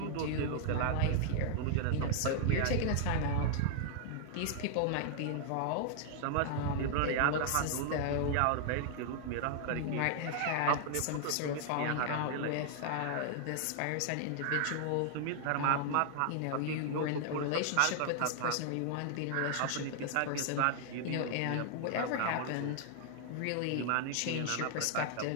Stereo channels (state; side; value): different; both; correlation -0.01